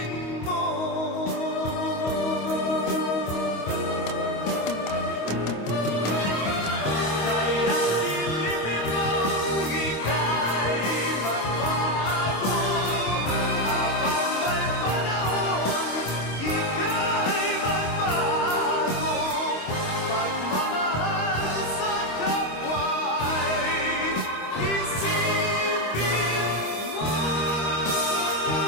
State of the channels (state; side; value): late; right; 25 ms